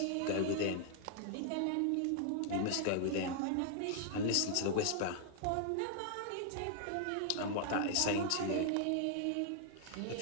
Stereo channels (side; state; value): both; different; correlation 0.00